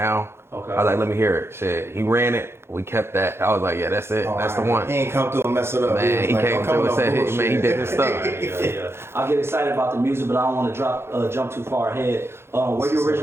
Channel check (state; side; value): late; left; 0.12 ms